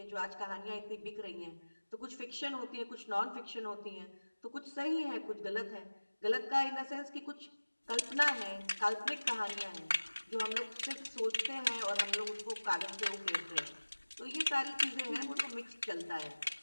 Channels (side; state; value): both; inverted; correlation -1.00